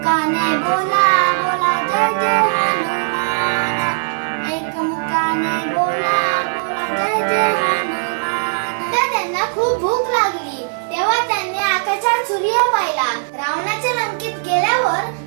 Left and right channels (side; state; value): left; silent; 56 dB below the other